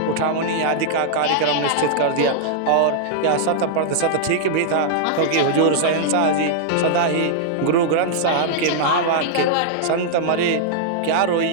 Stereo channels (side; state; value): both; different; correlation -0.01